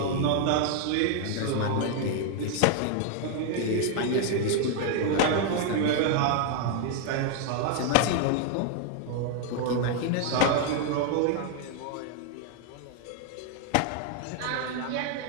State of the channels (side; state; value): both; different; correlation 0.00